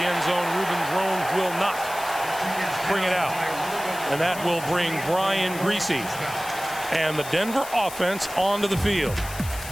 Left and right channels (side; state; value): left; noise; hiss, 13 dB below the sound